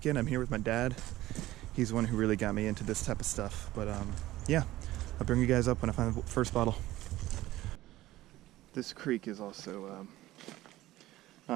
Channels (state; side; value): quieter; left; 16.2 dB